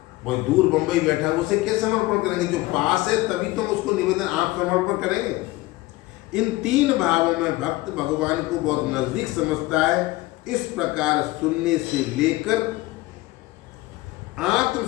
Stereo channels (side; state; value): right; quieter; 19.5 dB